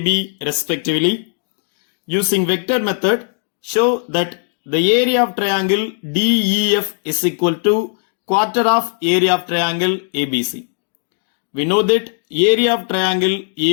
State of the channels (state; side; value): silent; right; 63 dB below the other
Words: respectively. Using vector method, show that the area of triangle DEF is equal to quarter of area of triangle ABC. We know that area of triangle